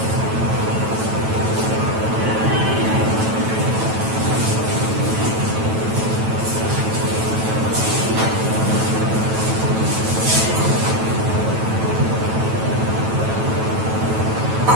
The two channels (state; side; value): late; left; 9.1 ms